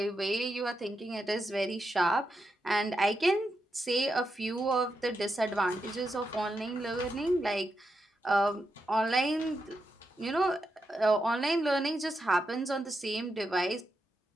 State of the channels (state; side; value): normal; both; correlation 0.85